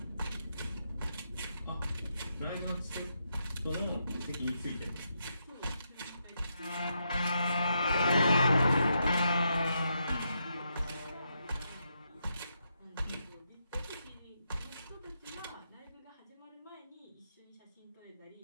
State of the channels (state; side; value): inverted; both; correlation -0.82